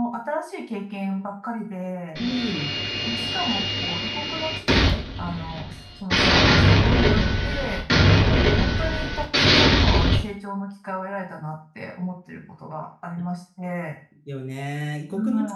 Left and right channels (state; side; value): identical; both; correlation 1.00